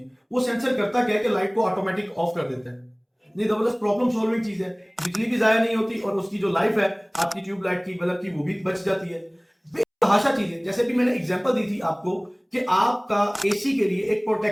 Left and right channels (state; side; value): identical; both; correlation 1.00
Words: वो सेंसर करता क्या है कि लाइट को ऑटोमेटिक ऑफ कर देता है। नहीं, जबरदस्त प्रॉब्लम सॉल्विंग चीज है। बिजली भी जाया नहीं होती और उसकी जो लाइफ है आपकी ट्यूबलाइट की, बल्ब की, वो भी बच जाती है। बेतहाशा चीज है। जैसे भी मैंने एग्जांपल दी थी आपको कि आपका एसी के लिए एक